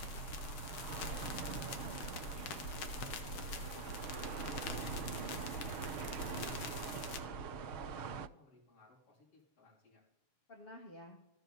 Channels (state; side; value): late; right; 7.2 ms